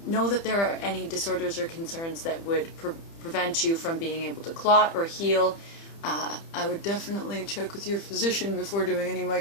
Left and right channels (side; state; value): right; late; 30 ms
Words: know that there are any disorders or concerns that would prevent you from being able to clot or heal, I would definitely check with your physician before doing any